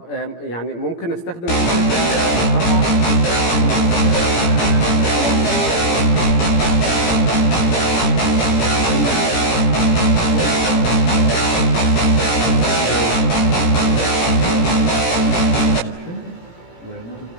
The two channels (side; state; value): right; late; 17 ms